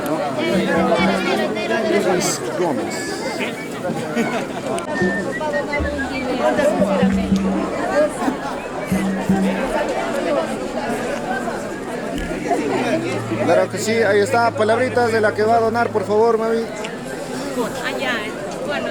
¿no? Luis Gómez. Claro que sí, ahí está, palabritas de la que va a donar, por favor, mami. Allá, bueno,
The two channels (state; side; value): identical; both; correlation 1.00